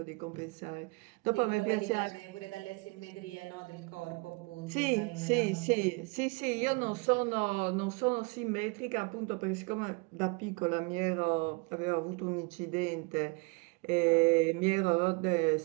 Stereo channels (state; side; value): quieter; left; 28.4 dB